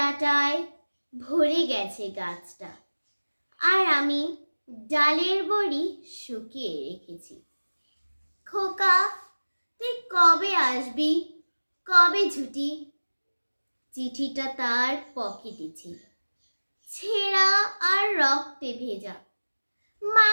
ভরে গেছে গাছটা, আর আমি ডালের বড়ি শুকিয়ে রেখেছি। খোকা, তুই কবে আসবি, কবে ছুটি? চিঠিটা তার পকেটে ছিল, ছেঁড়া আর রক্তে ভেজা।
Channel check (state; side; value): inverted; both; correlation -1.00